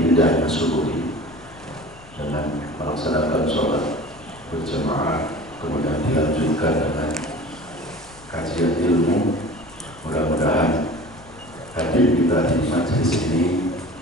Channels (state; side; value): noise; left; rumble, 23 dB below the sound